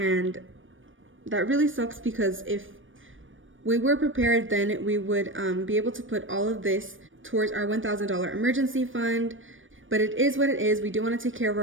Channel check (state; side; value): late; left; 0.57 ms